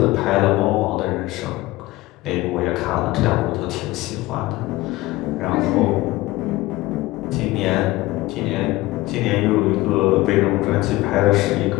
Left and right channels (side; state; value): right; quieter; 18.9 dB